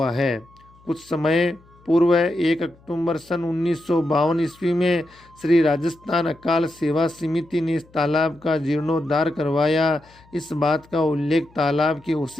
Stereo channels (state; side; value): noise; left; hum, 28 dB below the sound